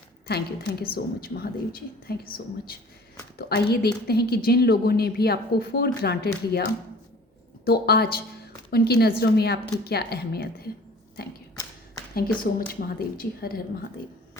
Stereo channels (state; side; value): normal; both; correlation 0.47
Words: Thank you so much Mahadev ji, thank you so much. तो आइए देखते हैं कि जिन लोगों ने भी आपको फॉर ग्रांटेड लिया, तो आज उनकी नज़रों में आपकी क्या अहमियत है। Thank you so much Mahadev ji. हर हर महादेव।